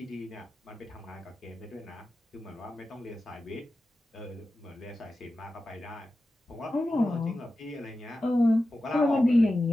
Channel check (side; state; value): both; normal; correlation 0.93